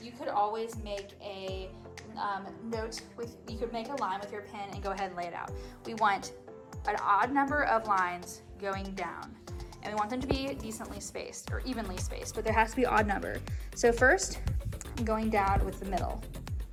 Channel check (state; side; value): identical; both; correlation 1.00